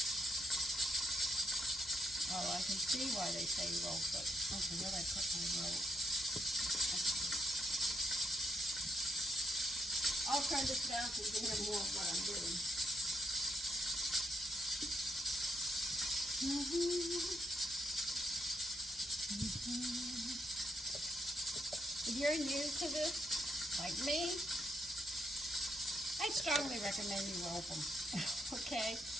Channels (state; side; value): normal; both; correlation 0.80